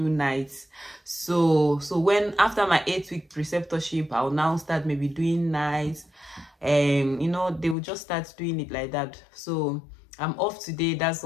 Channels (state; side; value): drops out; right; at 7.8 s